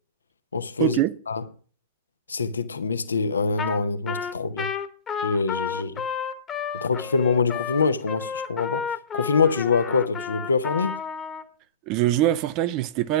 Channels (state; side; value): inverted; both; correlation -0.41